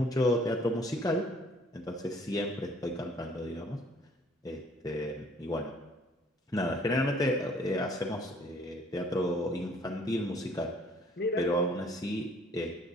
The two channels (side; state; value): both; normal; correlation 0.58